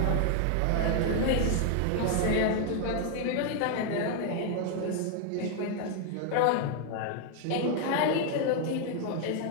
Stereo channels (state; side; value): different; both; correlation 0.00